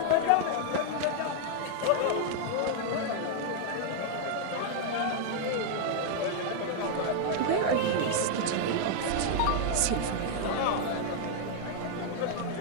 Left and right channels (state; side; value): different; both; correlation 0.00